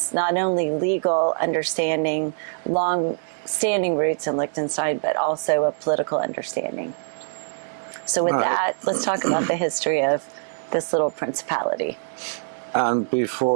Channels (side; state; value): left; silent; digital silence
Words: not only legal understanding, long standing roots in Liechtenstein, but also a political understanding. So with that, let's talk about the history of this little principality. And